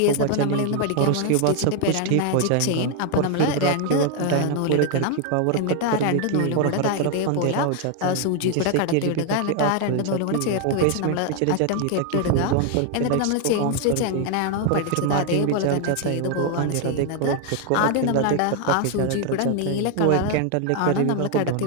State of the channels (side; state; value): both; different; correlation 0.01